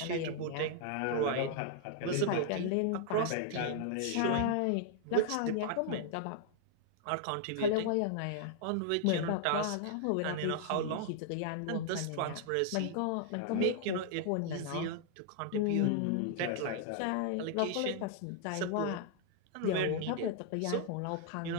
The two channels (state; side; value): different; both; correlation 0.00